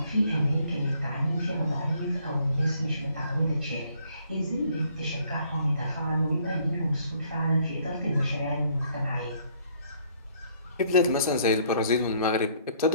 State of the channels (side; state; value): both; inverted; correlation -0.63